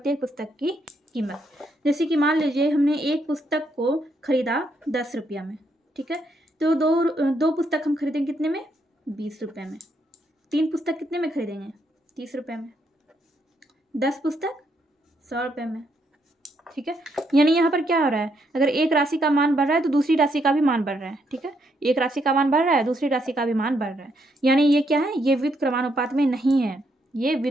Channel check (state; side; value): normal; both; correlation 0.76